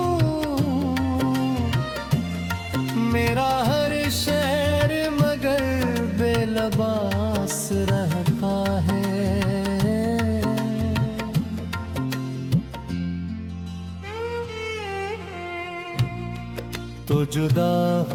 मेरा हर शेर मगर बेलबास रहता है। तो जुदा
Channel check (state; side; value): identical; both; correlation 1.00